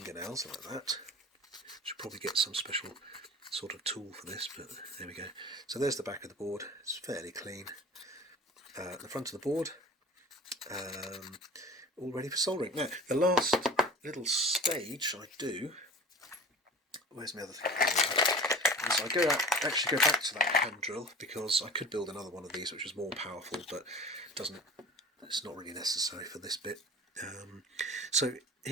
like that. Should probably get some special sort of tool for this, but there we go. So there's the back of the board. It's fairly clean. The front of the board, all ready for soldering. Now, the last little stage I do, where's my other thing? So I actually go back to that hand drill, because I could build another one of these which was more powerful, but it's not really necessary for this bit. So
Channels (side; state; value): both; normal; correlation 0.39